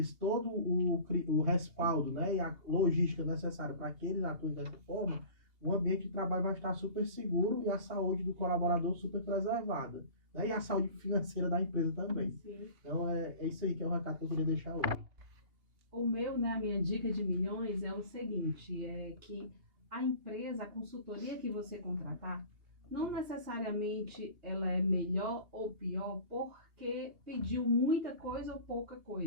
todo o respaldo, né, e a logística necessária para que eles atuem dessa forma, o ambiente de trabalho vai estar super seguro e a saúde do colaborador super preservada, né, e a saúde financeira da empresa também. Sim. Então, é isso aí que é o recado que eu queria deixar hoje. O meu, né, a minha dica de milhões é o seguinte, é que a empresa, a consultoria que você contratar, não necessariamente ela é melhor ou pior porque pediu muita coisa ou pouca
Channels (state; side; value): late; left; 2.8 ms